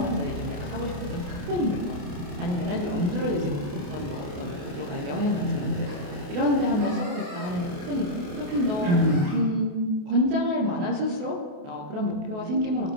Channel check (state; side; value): late; left; 28 ms